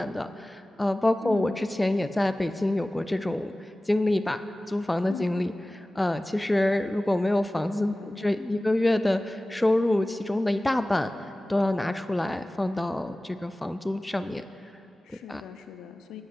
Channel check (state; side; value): normal; both; correlation 0.97